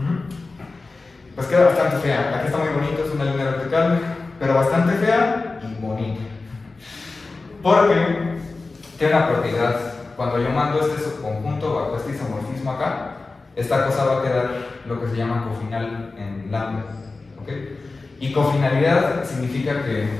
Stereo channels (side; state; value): right; quieter; 3.7 dB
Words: Pues queda bastante fea. Aquí está muy bonito, es una línea vertical, pero bastante fea y bonita. Porque tiene una propiedad. Cuando yo mando este subconjunto bajo este isomorfismo acá, esta cosa va a quedar lo que se llama cofinal en lambda. ¿Ok? Y cofinalidad significa que